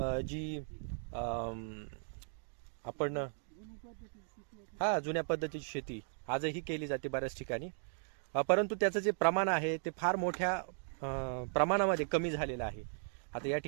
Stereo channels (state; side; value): silent; left; digital silence